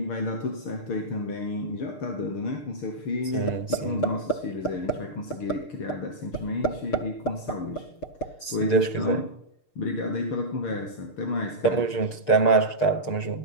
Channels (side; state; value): right; late; 6.6 ms